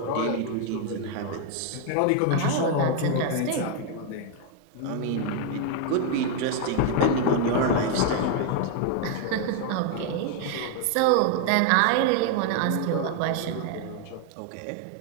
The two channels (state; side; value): different; both; correlation 0.01